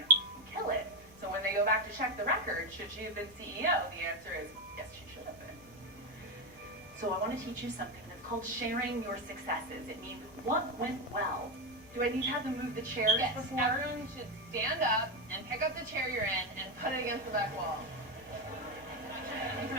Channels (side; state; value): both; normal; correlation 0.09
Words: to kill it. So when they go back to check the record, should she have been CEO? The answer is yes, she should have been. So I want to teach you something that's called sharing your successes. It means what went well. Do I need to have them move the chairs before? Everyone should stand up and pick up the chair you're in and put it against the back wall.